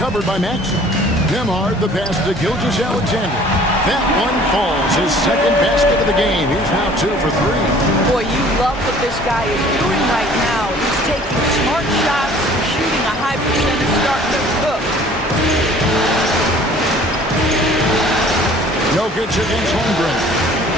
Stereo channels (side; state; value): both; normal; correlation 0.51